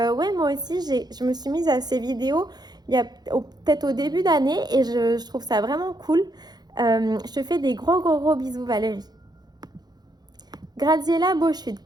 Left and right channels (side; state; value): left; late; 0.20 ms